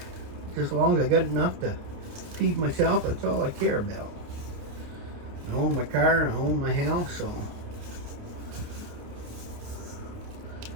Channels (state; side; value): late; left; 28 ms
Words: Just as long as I got enough to feed myself, that's all I care about. I own my car, I own my house, so